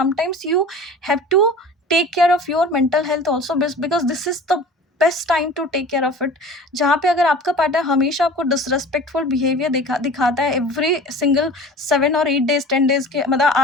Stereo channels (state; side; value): normal; both; correlation 0.40